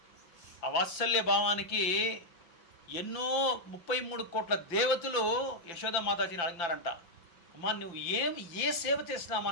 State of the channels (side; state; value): right; late; 5.8 ms